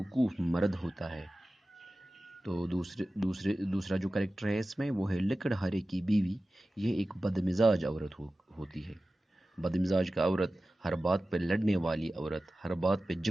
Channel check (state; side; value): normal; both; correlation 0.95